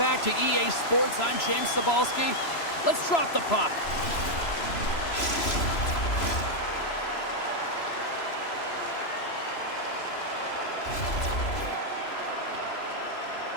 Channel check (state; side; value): late; right; 3.0 ms